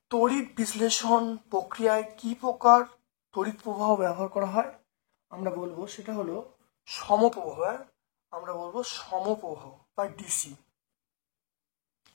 তড়িৎ বিশ্লেষণ প্রক্রিয়ায় কি প্রকার তড়িৎ প্রবাহ ব্যবহার করা হয়? আমরা বলবো সেটা হলো সমপ্রবাহ। আমরা বলবো সমপ্রবাহ বা ডিসি।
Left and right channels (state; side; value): silent; right; digital silence